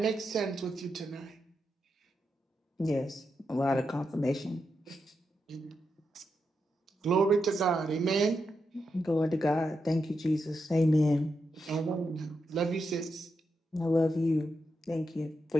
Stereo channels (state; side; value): normal; both; correlation 0.85